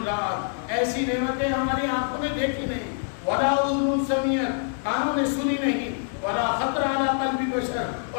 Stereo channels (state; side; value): silent; right; digital silence